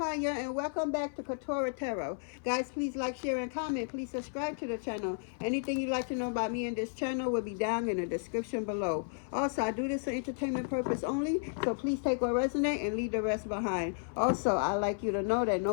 and welcome back to Quetrah Tarot. Guys, please like, share, and comment. Please subscribe to the channel. Anything you'd like to know about me and this channel will be down in the description below. Also, I do this for entertainment purpose only, so please take what resonates and leave the rest behind. Also, I'd like you to know that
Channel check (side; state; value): right; silent; 56 dB below the other